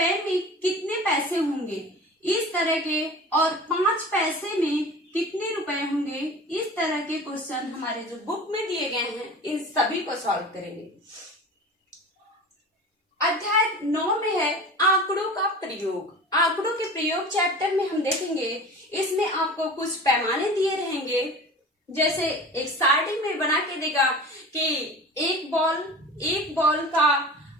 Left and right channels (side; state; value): both; normal; correlation 0.37